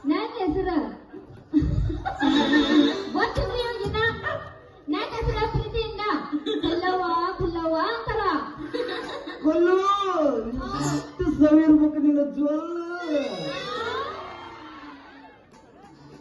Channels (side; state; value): both; identical; correlation 1.00